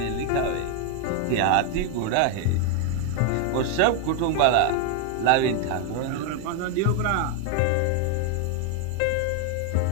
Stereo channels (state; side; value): different; both; correlation 0.01